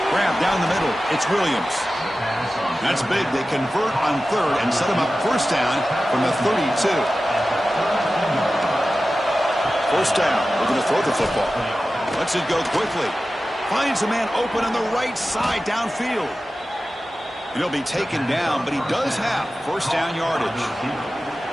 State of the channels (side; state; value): both; normal; correlation 0.94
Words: Grab down the middle. It's Williams. That's big. They convert on 3rd and set him up 1st down from the 32. 1st down. We're going to throw the football. Lets it go quickly. Finds a man open on the right side downfield. And he'll be taken down, but he does have 1st down yardage.